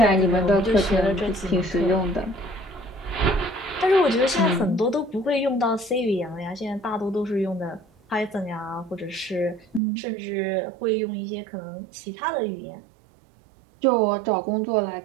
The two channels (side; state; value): left; drops out; at 9.8 s